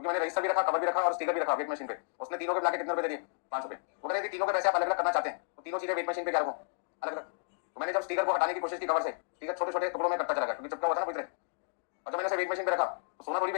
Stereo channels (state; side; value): silent; right; digital silence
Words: मैंने रजिस्टर भी रखा, कवर भी रखा और स्टिकर भी रखा वेट मशीन पे, उसने तीनों के मिला के कितने रुपए दे दिए 5 रुपए। वो कह रहे थे तीनों के पैसे आप अलग अलग करना चाहते हैं तो तीनों चीजें वेट मशीन पे क्या रखो अलग अलग। तो मैंने जब स्टिकर को हटाने की कोशिश की कवर से, स्टिकर छोटे छोटे टुकड़ों में कटता चला गया क्योंकि चिपका हुआ था ना पूरी तरह, और जब मैंने उसे वेट मशीन पे रखा तो सोना थोड़ी